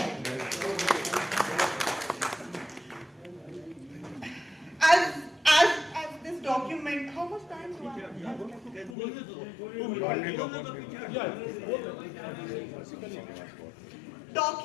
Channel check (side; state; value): right; drops out; at 9.0 s